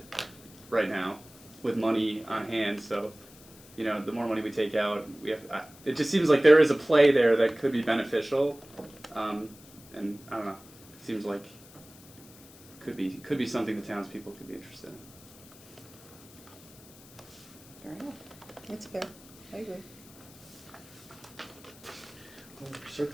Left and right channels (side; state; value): left; noise; hiss, 22 dB below the sound